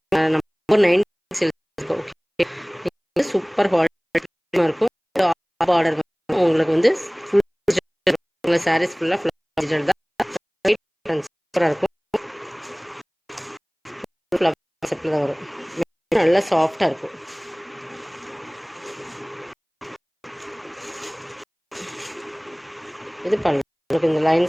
நம்ம 9 இருக்கோம். ஓகே, சூப்பர் குவாலிட்டியாக இருக்கும். ஆர்டர் உங்களுக்கு வந்து ஃபுல் சாரீஸ் ஃபுல்லாக டிஜிட்டல் தான். சூப்பராக இருக்கும். செட்டில் தான் வரும். நல்லா சாஃப்டாக இருக்கும். இது பல்லு. உங்களுக்கு இந்த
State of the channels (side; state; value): both; identical; correlation 1.00